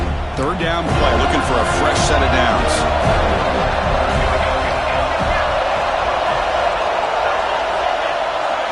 Third down play, looking for a fresh set of downs.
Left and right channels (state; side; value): identical; both; correlation 1.00